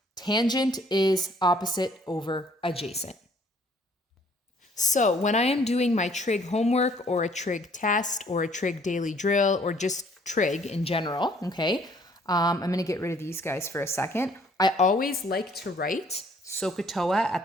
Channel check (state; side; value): normal; both; correlation 0.61